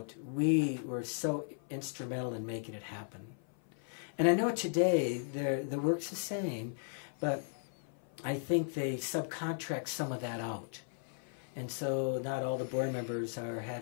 we were so instrumental in making it happen. And I know today the work's the same, but I think they subcontract some of that out. And so not all the board members are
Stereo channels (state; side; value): silent; right; 54 dB below the other